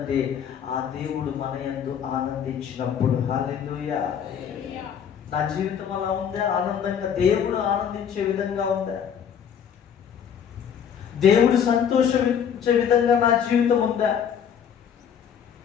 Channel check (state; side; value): quieter; right; 8.1 dB